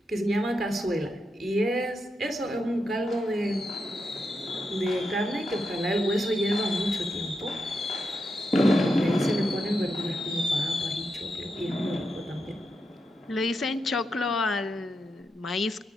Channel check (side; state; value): both; normal; correlation 0.85